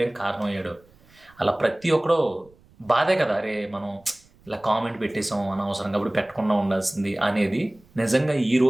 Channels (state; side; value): noise; right; rumble, 29 dB below the sound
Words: కారణమయ్యాడో, అలా ప్రతి ఒక్కడో బాధే కదా, అరే మనం ఇలా కామెంట్ పెట్టేసాం అనవసరంగా, అప్పుడు పెట్టకుండా ఉండాల్సింది అనేది. నిజంగా